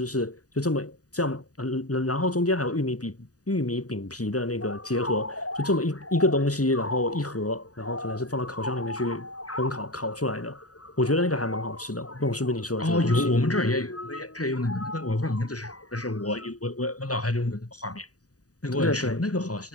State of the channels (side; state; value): right; late; 0.67 ms